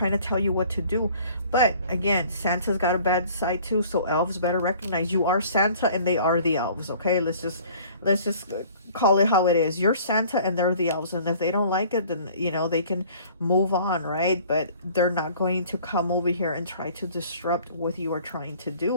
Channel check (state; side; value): inverted; both; correlation -0.51